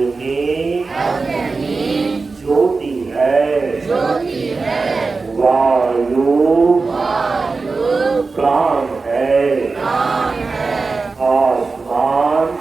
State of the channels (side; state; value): left; quieter; 4.1 dB